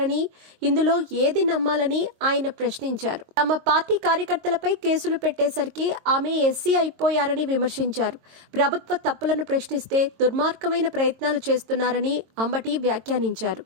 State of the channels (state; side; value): late; left; 22 ms